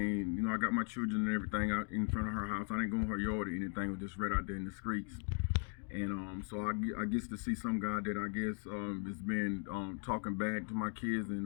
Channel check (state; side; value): quieter; right; 39.8 dB